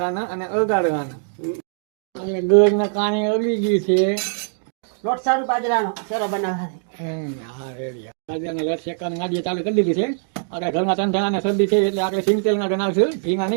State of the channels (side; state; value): left; silent; digital silence